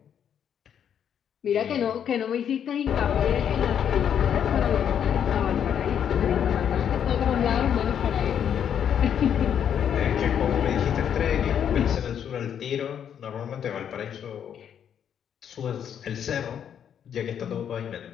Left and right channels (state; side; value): quieter; right; 8.7 dB